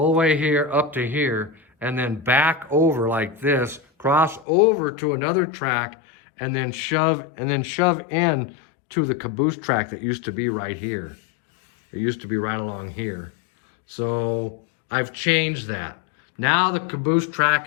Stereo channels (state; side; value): drops out; right; at 4.5 s